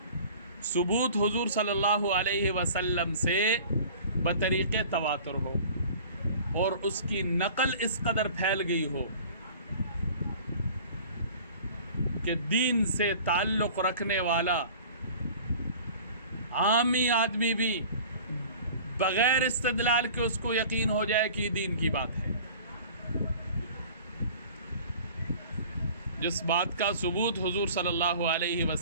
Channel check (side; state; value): both; inverted; correlation -0.45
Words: ثبوت حضور صلی اللہ علیہ وسلم سے بطریق تواتر ہو، اور اس کی نقل اس قدر پھیل گئی ہو کہ دین سے تعلق رکھنے والا عامی آدمی بھی بغیر استدلال کے اس کو یقین ہو جائے کہ دین کی بات ہے. جس بات کا ثبوت حضور صلی اللہ علیہ